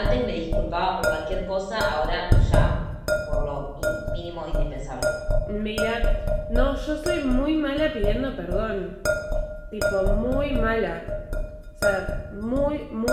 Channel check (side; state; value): both; identical; correlation 1.00